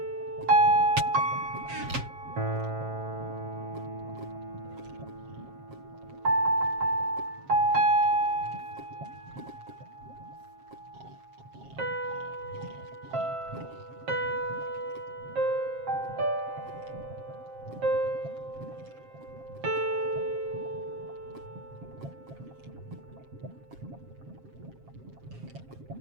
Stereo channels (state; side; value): late; left; 7.5 ms